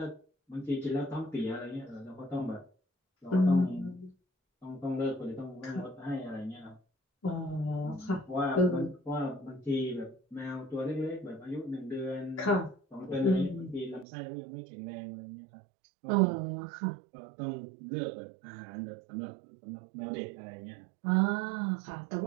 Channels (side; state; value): left; drops out; at 14.1 s